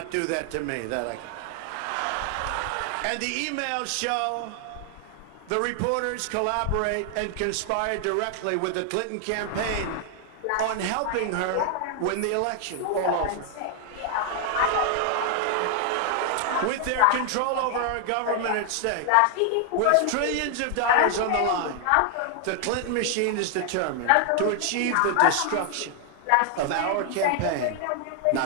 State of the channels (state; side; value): different; both; correlation 0.00